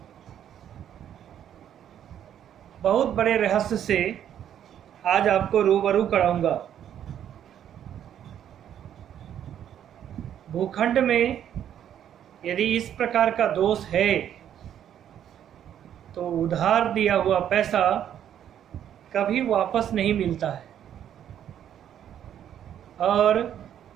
बहुत बड़े रहस्य से आज आपको रूबरू कराऊंगा। भूखंड में यदि इस प्रकार का दोष है तो उधार दिया हुआ पैसा कभी वापस नहीं मिलता है, और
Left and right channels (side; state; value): left; quieter; 10.0 dB